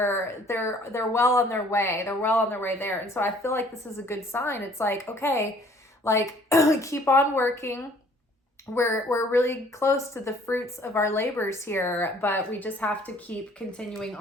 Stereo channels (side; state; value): both; normal; correlation 0.56